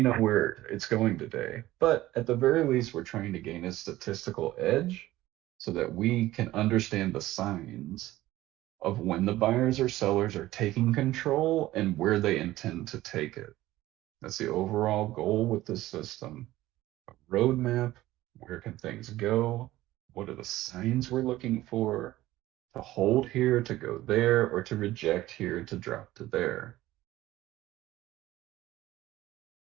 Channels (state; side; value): quieter; left; 16.1 dB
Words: where it's going today. But at the very least, we're trying to gain a statistical edge so that we can understand the signs of when the buyers or sellers are taking control and where they intend to take it. That's the overall goal with this system. A roadmap, where can things go? What are the signs we're looking for to hold here, to go there, or to reject here, to drop to there?